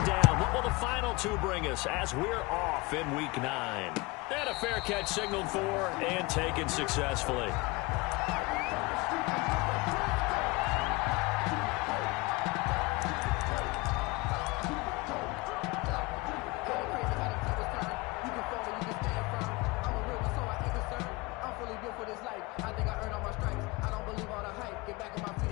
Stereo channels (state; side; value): quieter; right; 24.0 dB